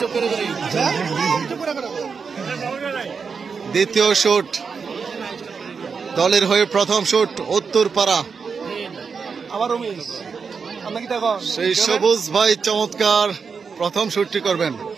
দ্বিতীয় শুট দলের হয়ে প্রথম শুট উত্তরপাড়া, সেই সবুজ ভাই চমৎকার প্রথম শুটটি করবেন।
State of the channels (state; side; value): quieter; left; 5.6 dB